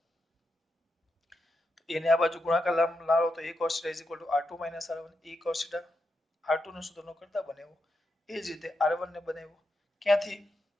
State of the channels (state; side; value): normal; both; correlation 0.85